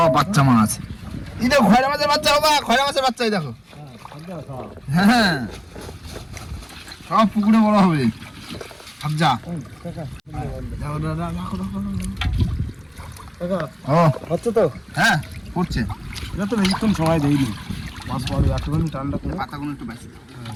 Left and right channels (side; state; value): both; identical; correlation 1.00